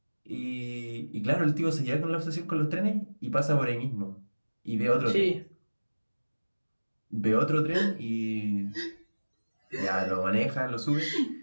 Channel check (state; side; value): inverted; both; correlation -1.00